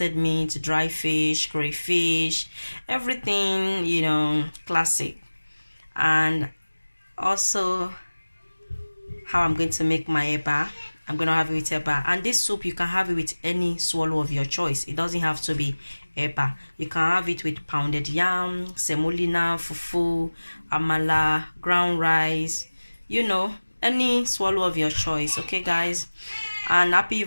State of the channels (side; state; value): both; inverted; correlation -1.00